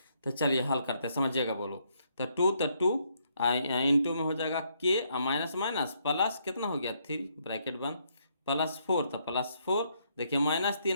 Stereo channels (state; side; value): inverted; both; correlation -0.73